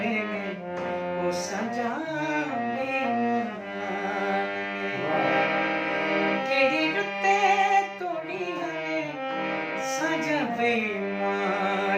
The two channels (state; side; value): identical; both; correlation 1.00